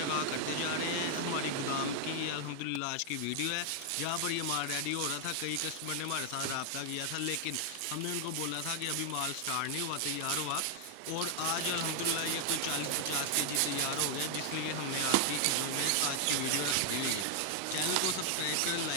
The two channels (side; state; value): both; different; correlation 0.00